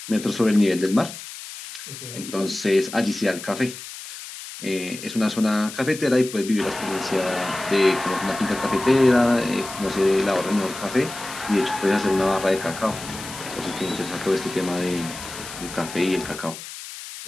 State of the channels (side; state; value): left; noise; hiss, 12 dB below the sound